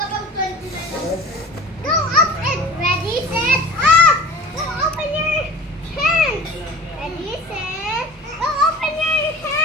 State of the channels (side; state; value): both; normal; correlation 0.40